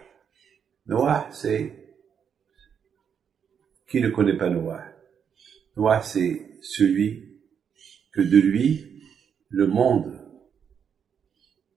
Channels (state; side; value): quieter; left; 7.5 dB